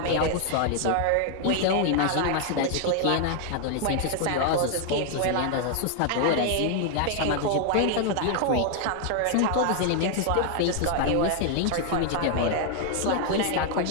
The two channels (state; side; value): different; both; correlation 0.00